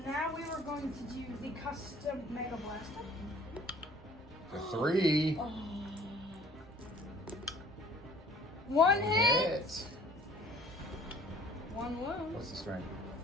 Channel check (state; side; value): normal; both; correlation 0.52